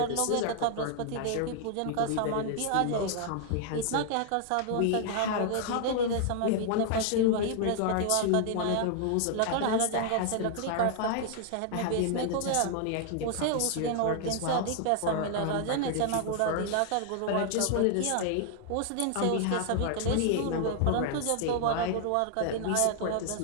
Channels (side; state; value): both; different; correlation -0.01